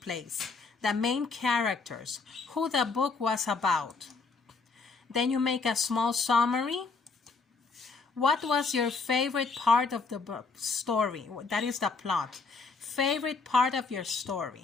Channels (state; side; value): quieter; right; 4.4 dB